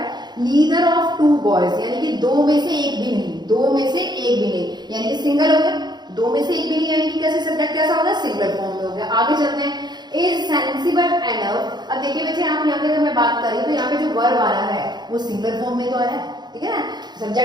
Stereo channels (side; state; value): left; late; 0.21 ms